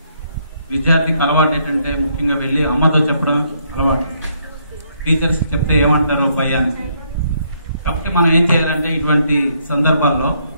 విద్యార్థికి అలవాటు ఏంటంటే ముఖ్యంగా వెళ్ళి అమ్మతో చెప్పడం అలవాటు. టీచర్స్ చెప్తే ఏమంటారో భయానికి. కాబట్టి మనం ఏం చేయాలంటే ఇటువంటి సందర్భాల్లో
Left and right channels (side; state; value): both; inverted; correlation -0.71